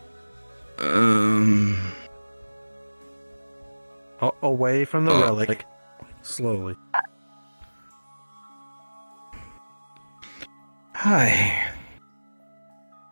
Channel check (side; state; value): both; inverted; correlation -1.00